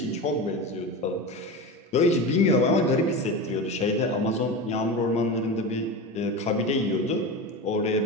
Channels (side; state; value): both; normal; correlation 0.25